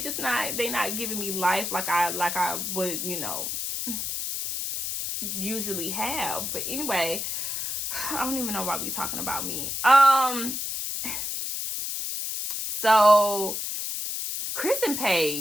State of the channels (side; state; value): left; noise; hiss, 3 dB below the sound